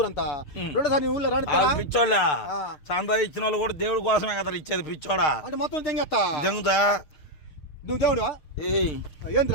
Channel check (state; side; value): late; right; 6.7 ms